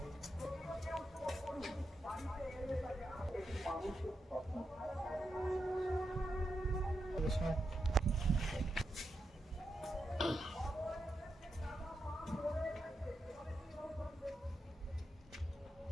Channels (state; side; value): normal; both; correlation 0.86